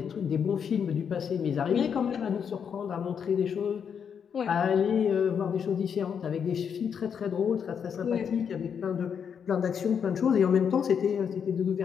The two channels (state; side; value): quieter; right; 7.3 dB